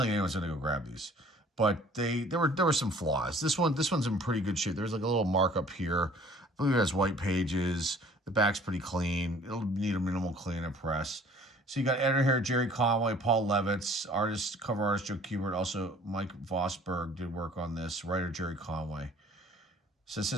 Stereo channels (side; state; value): both; normal; correlation 0.53